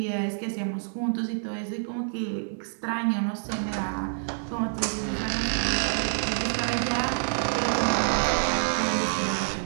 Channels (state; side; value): silent; left; digital silence